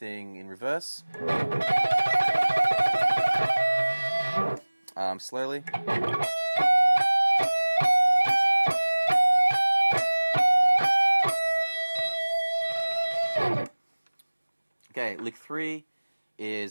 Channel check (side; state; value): both; inverted; correlation -1.00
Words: in reverse. Slowly. Okay, lick 3